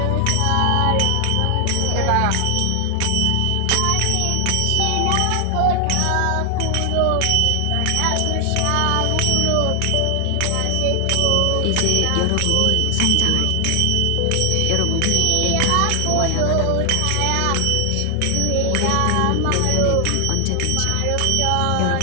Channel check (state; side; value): different; both; correlation 0.00